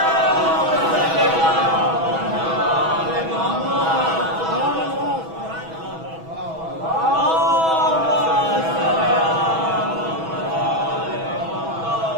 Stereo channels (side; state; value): left; late; 6.1 ms